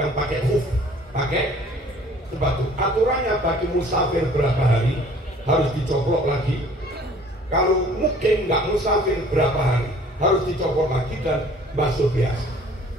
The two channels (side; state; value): both; normal; correlation 0.53